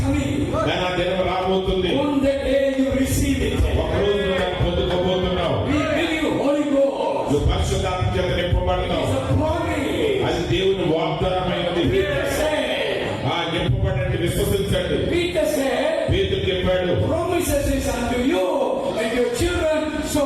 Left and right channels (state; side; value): identical; both; correlation 1.00